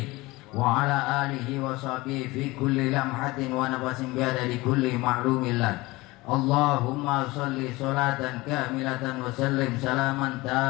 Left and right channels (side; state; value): right; quieter; 21.4 dB